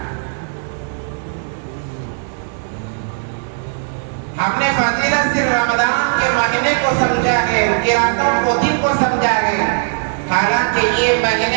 ہم نے فضیلت صرف رمضان کے مہینے کو سمجھا ہے، کی راتوں کو دن کو سمجھا ہے. حالانکہ یہ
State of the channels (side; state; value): left; silent; digital silence